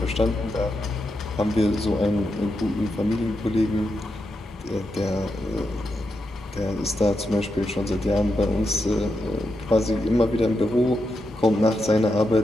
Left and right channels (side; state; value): both; normal; correlation 0.85